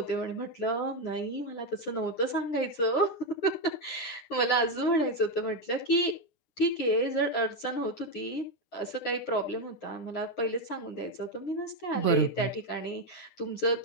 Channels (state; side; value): late; right; 9.7 ms